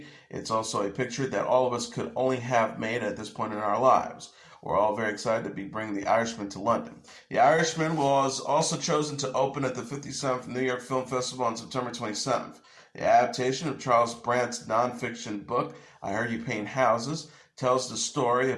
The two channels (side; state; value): both; identical; correlation 1.00